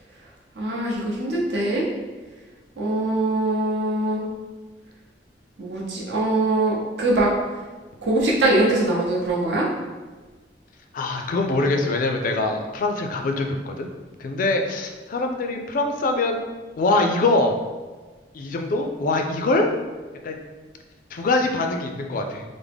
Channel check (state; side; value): normal; both; correlation 0.29